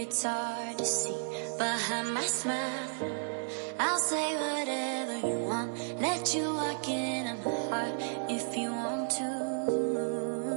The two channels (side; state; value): left; silent; digital silence